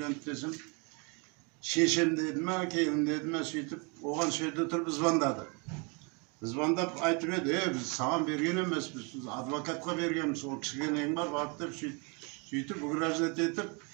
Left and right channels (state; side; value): quieter; left; 32.3 dB